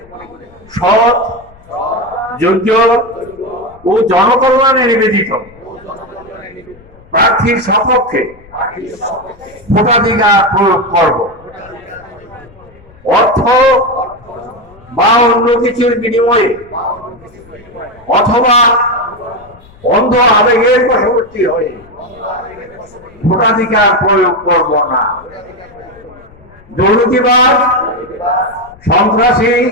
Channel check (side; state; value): left; noise; rumble, 25 dB below the sound